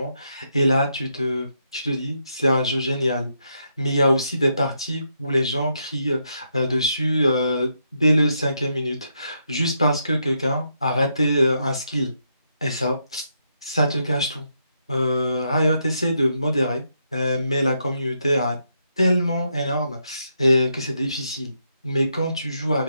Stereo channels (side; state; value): both; inverted; correlation -0.80